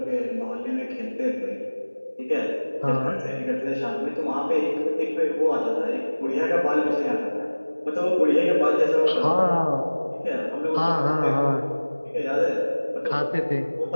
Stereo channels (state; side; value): inverted; both; correlation -1.00